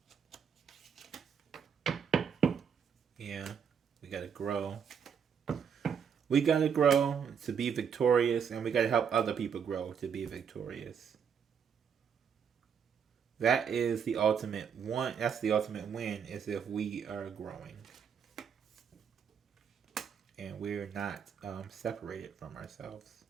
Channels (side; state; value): left; quieter; 7.2 dB